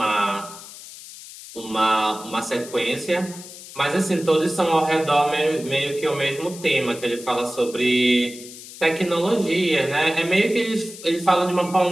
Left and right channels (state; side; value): noise; left; hiss, 15 dB below the sound